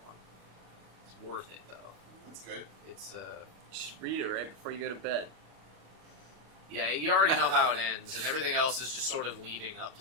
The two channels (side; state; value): left; late; 25 ms